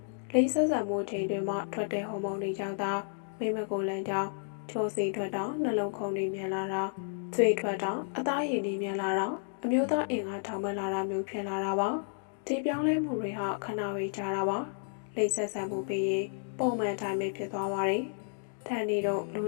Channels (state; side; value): silent; right; digital silence